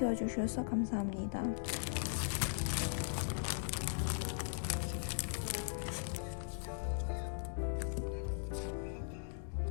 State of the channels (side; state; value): right; silent; digital silence